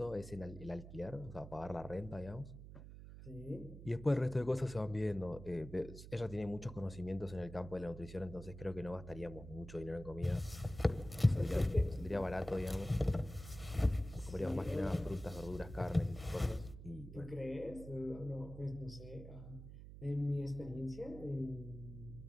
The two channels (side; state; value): right; noise; hum, 13 dB below the sound